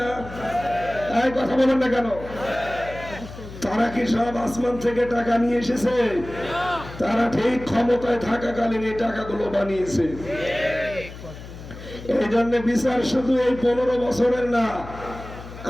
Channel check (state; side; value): noise; left; hum, 14 dB below the sound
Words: এই কথা বলেন না কেন? তারা কি সব আসমান থেকে টাকা নিয়ে এসেছে? তারা ঠিক ক্ষমতায় থাকাকালীন এই টাকাগুলো বানিয়েছে। এই জন্য বিচার শুধু এই 15 বছরের না,